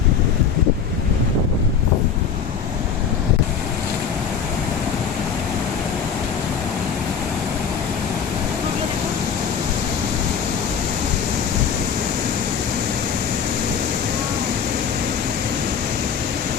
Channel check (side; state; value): right; quieter; 7.0 dB